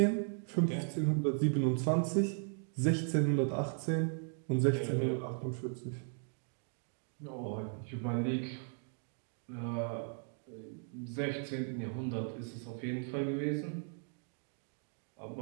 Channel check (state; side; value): silent; left; 53 dB below the other